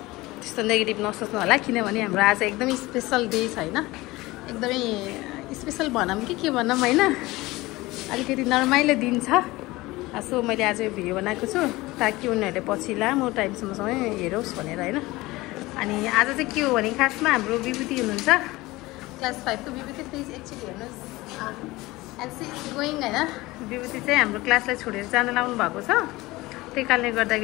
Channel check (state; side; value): quieter; right; 20.1 dB